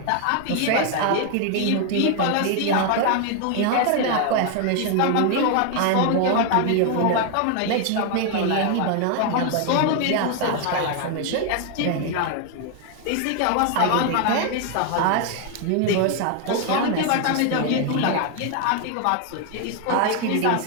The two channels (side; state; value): both; different; correlation 0.00